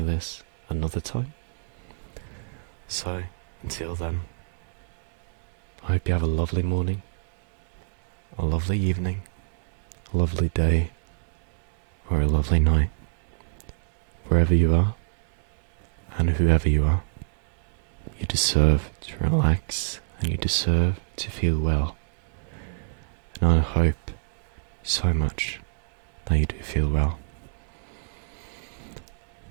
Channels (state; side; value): silent; left; digital silence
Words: this another time. So, until then, I hope you have a lovely morning, a lovely evening, a lovely day, or a lovely night, wherever you are, and whoever you are. You deserve to relax, and you deserve to feel well. And I hope so much that you do feel well.